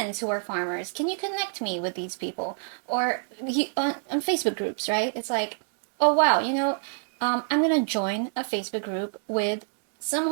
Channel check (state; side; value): silent; left; digital silence